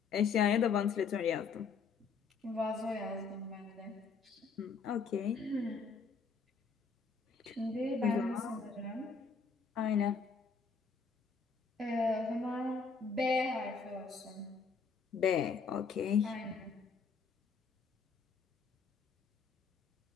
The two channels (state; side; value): quieter; right; 5.2 dB